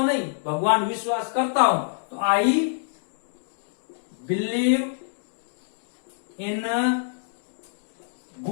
नहीं भगवान विश्वास करता हूं, तो आई बिलीव इन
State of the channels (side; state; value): right; silent; digital silence